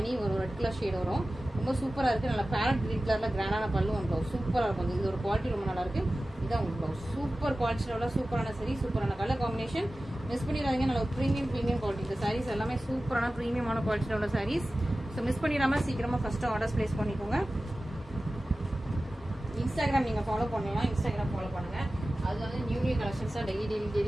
வரும், ரெட் கலர் ஷேட் வரும். ரொம்ப சூப்பரா இருக்கு. நல்லா பேரட் கிரீன் கலர்ல கிராண்டான பல்லு ஒன் ப்ளவுஸ் சூப்பரா இருக்கும். இது ஒரு குவாலிட்டி ரொம்ப நல்லா இருக்கு. இதான் உங்களுக்கு ப்ளவுஸ் சூப்பர் குவாலிட்டியில உள்ள சூப்பரான சரி, சூப்பரான கலர் காம்பினேஷன். மிஸ் பண்ணிடாதீங்க. நல்ல ப்ரீமியம் குவாலிட்டி. இந்த சாரீஸ் எல்லாமே சூப்பரான ப்ரீமியமான குவாலிட்டியில உள்ள சாரீஸ். ஸோ மிஸ் பண்ணிடாம சீக்கிரமா ஃபர்ஸ்ட் ஆர்டர்ஸ் பிளேஸ் பண்ணிக்கோங்க. இன்ஸ்டாகிராம் நீங்க ஃபாலோ பண்ணலாம். இன்ஸ்டாகிராம் ஃபாலோ பண்ணுங்க. அது வந்து நியூ கலெக்ஷன்ஸா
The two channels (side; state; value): both; normal; correlation 0.96